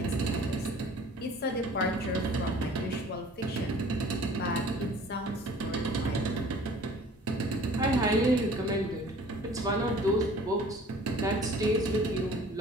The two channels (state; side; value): normal; both; correlation 0.49